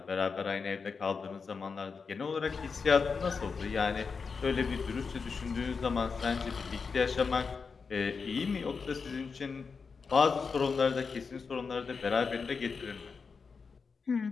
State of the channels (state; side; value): quieter; right; 5.2 dB